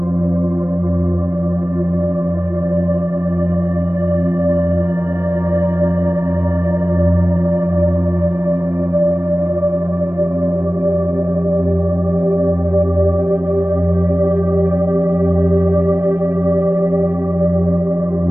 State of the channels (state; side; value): late; left; 0.12 ms